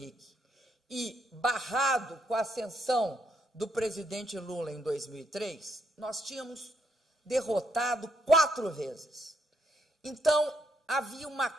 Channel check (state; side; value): normal; both; correlation 0.75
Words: e barrado com a ascensão do presidente Lula em 2003, nós tínhamos derrotado 4 vezes. Então, havia uma